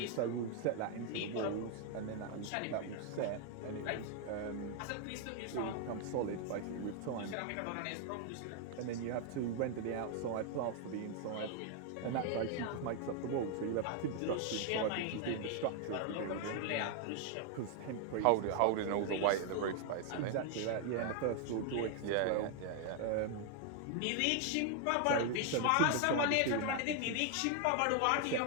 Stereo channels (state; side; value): different; both; correlation 0.00